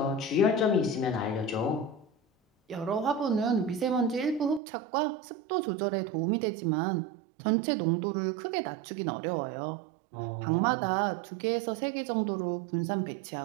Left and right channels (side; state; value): left; drops out; at 4.6 s